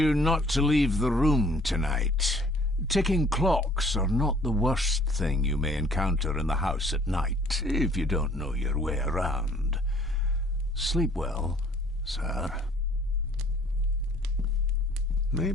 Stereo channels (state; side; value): normal; both; correlation 0.56